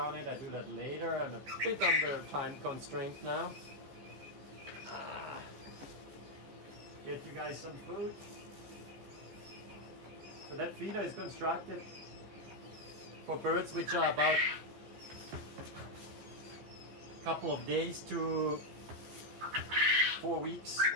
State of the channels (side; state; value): left; late; 15 ms